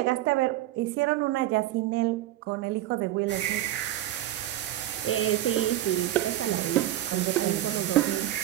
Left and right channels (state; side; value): quieter; left; 13.9 dB